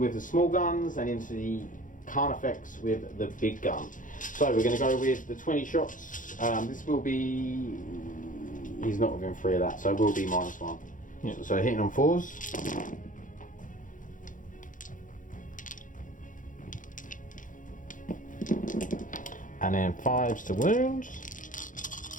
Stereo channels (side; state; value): right; late; 0.38 ms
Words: the small guns and into the Carnifex with the big gun. So we're going to go with the 20 shots. This will be... He's not within 3 of that, so it will be -1. Yeah. So hitting on 4s. And then 5s to